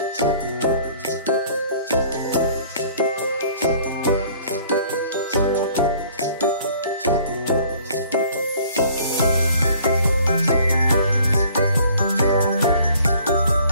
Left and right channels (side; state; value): both; inverted; correlation -0.55